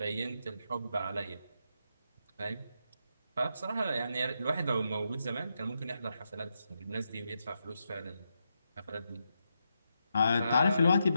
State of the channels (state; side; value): inverted; both; correlation -0.84